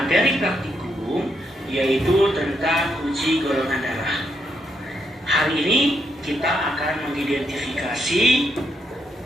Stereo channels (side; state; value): both; normal; correlation 0.78